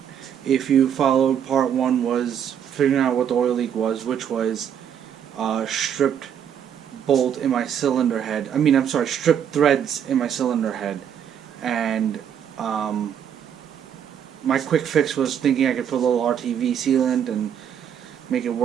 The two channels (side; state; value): left; quieter; 8.7 dB